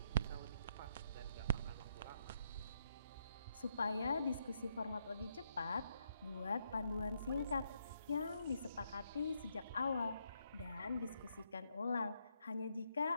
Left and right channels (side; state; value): both; inverted; correlation -0.76